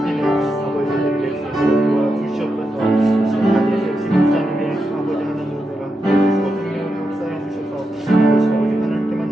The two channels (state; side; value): normal; both; correlation 0.87